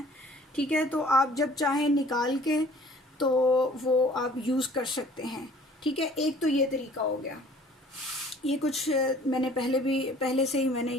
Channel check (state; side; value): normal; both; correlation 0.53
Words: ठीक है, तो आप जब चाहें निकाल के तो वो आप यूज़ कर सकते हैं। ठीक है, एक तो ये तरीका हो गया। ये कुछ मैंने पहले से ही मैंने